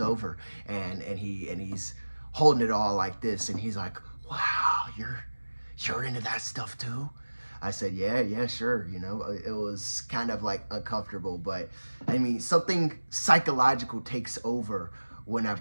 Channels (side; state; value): both; inverted; correlation -1.00